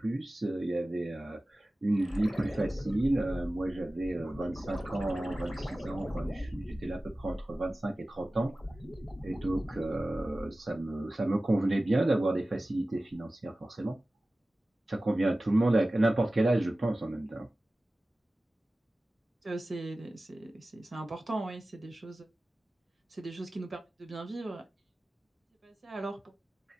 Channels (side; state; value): both; normal; correlation 0.96